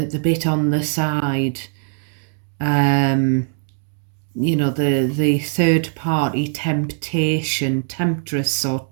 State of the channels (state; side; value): silent; left; digital silence